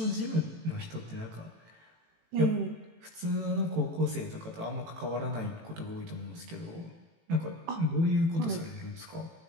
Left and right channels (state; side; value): late; left; 18 ms